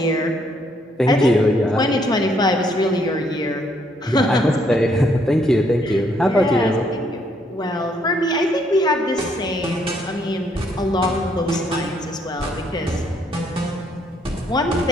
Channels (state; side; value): normal; both; correlation 0.70